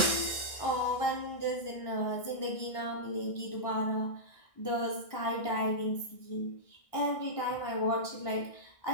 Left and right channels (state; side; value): late; right; 1.6 ms